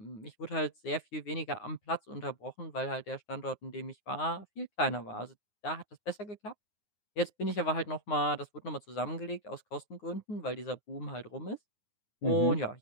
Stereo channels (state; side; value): late; right; 9.6 ms